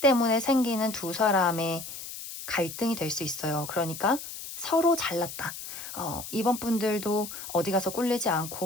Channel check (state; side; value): noise; left; hiss, 10 dB below the sound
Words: 생기는 두 사람의 갈등이 될 수 있어요. 그러니까 서로 잘났다. 이번 분들도 어디 가서 꿀리지